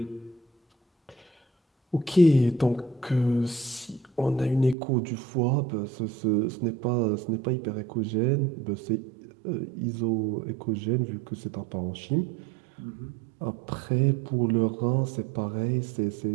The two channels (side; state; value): left; drops out; at 4.8 s